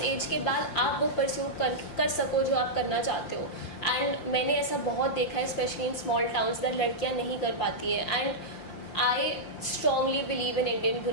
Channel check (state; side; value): late; right; 5.7 ms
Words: एज के बाद आप वो परस्यू कर सको जो आप करना चाहते हो. एंड मैंने ऐसा बहुत देखा है specially in small towns that लड़कियां नहीं कर पाती हैं. And I strongly believe in Indian